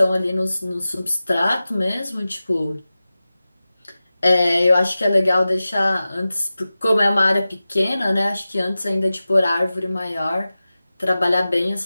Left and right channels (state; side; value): inverted; both; correlation -0.95